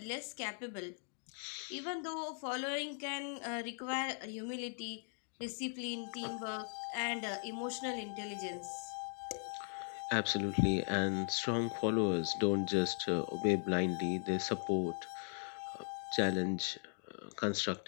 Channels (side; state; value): right; silent; 52 dB below the other